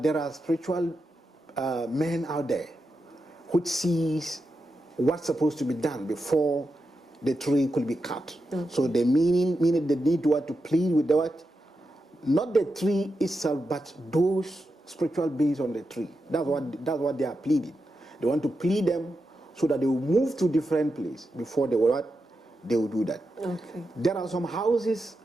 there are spiritual men out there which sees what's supposed to be done before the tree could be cut. So the meaning they need to plead with the what? Not the tree itself, but those spiritual beings on the tree. That's what they are pleading. They want to plead them so that they will move to different place before they will do that. Okay. There are some houses,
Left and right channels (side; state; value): both; normal; correlation 0.88